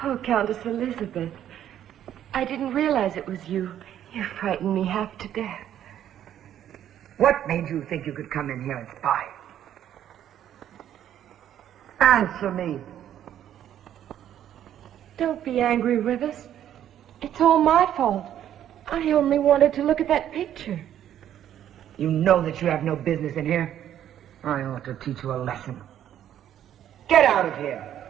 Oh, Countess Elizabeth. I didn't realize it was you. You frightened me half to death. What made you think you could come in here and spy? Answer me. Don't be angry, Rivers. It's all my fault. I only wanted to look at that picture. You know that you have no business in here. I ought to teach you a lesson. Get out of here.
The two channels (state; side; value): quieter; left; 10.8 dB